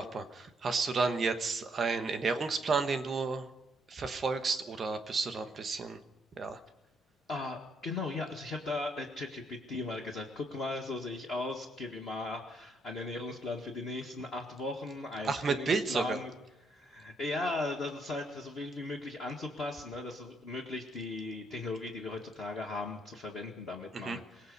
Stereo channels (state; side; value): normal; both; correlation 0.73